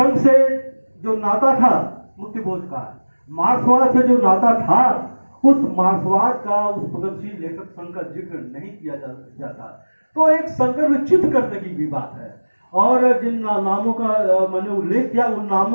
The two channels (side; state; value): both; inverted; correlation -1.00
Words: से जो नाता था मुक्तिबोध का, मार्क्सवाद से जो नाता था, उस मार्क्सवाद का, उस प्रगतिशील लेखक संघ का जिक्र नहीं किया जाता। तो एक संदर्भ चित्त करने की भी बात है, और जिन नामों का मैंने उल्लेख किया, उन